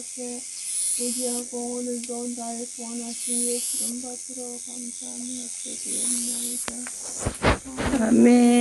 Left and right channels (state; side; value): identical; both; correlation 1.00